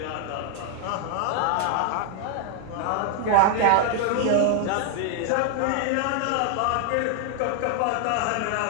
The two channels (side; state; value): both; different; correlation 0.00